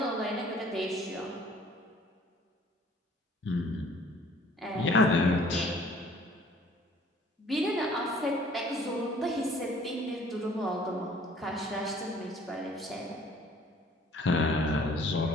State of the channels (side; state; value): both; normal; correlation 0.54